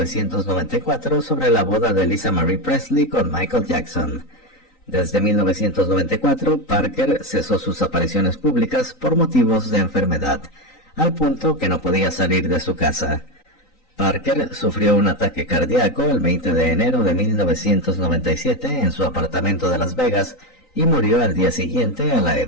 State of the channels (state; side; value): late; right; 3.9 ms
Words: sobre la boda de Lisa Marie Presley con Michael Jackson. Desde 1994, Parker cesó sus apariciones públicas por motivos de enfermedad, al punto que no podía salir de su casa. Parker sufrió un ataque cardíaco el 20 de enero de 1997 en su apartamento de Las Vegas y murió al día siguiente a la